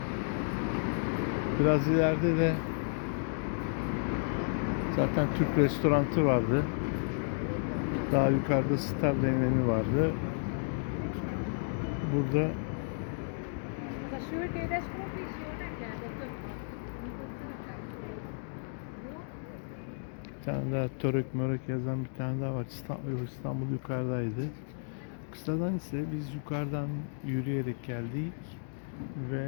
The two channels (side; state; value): right; silent; digital silence